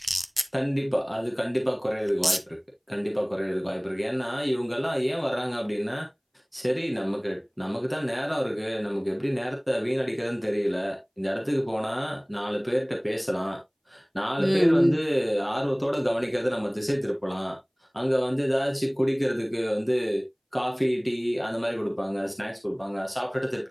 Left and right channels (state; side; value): identical; both; correlation 1.00